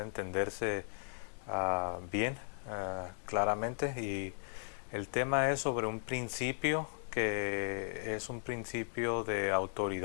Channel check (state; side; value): silent; right; digital silence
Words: entenderse bien, claramente, y el tema es sobre un principio que es un principio de